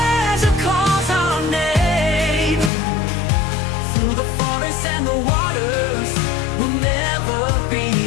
calls our name. Through the forests and the waters, we'll never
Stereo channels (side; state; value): right; drops out; at 2.7 s